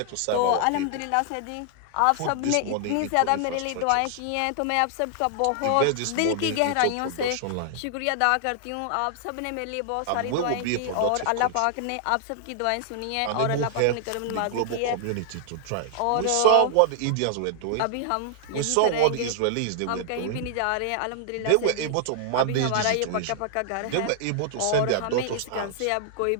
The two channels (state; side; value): different; both; correlation -0.01